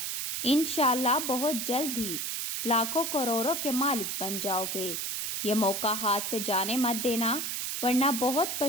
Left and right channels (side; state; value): right; noise; hiss, 2 dB below the sound